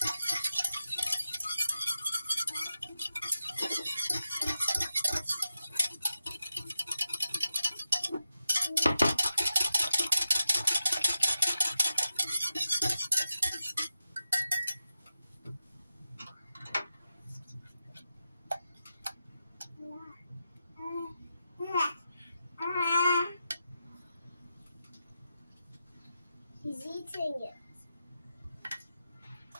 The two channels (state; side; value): inverted; both; correlation -0.89